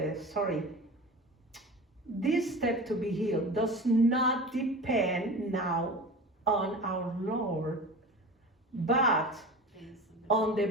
story. This step to be healed does not depend now on our Lord, but on the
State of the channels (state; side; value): normal; both; correlation 0.33